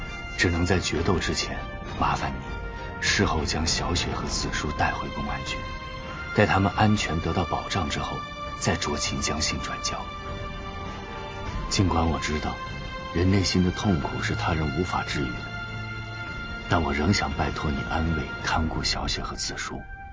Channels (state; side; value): identical; both; correlation 1.00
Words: 只能在决斗之前麻烦你事后将小雪和子舒带回公安局，待他们安全得到保障之后，再酌情将信转交。尽管我知道人内心的痛苦是他人无法治愈的，但我仍想拜托你安慰看顾小雪和子舒，